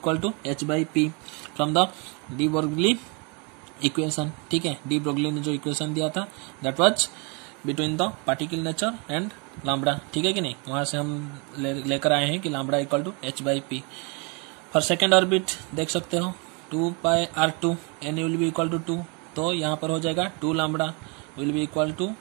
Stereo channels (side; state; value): left; quieter; 32.9 dB